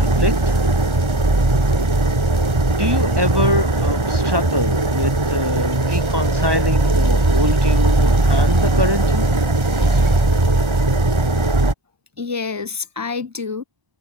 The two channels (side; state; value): left; late; 1.4 ms